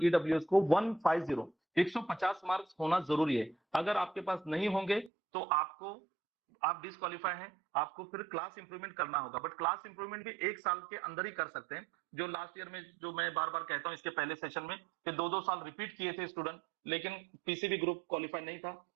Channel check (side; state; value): left; drops out; at 5.1 s